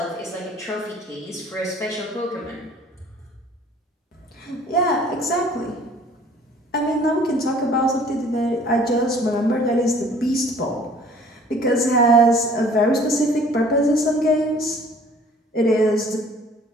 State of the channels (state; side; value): normal; both; correlation 0.53